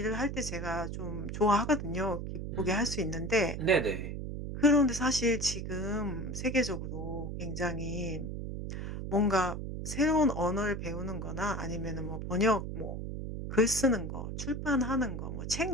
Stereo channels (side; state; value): right; noise; hum, 5 dB below the sound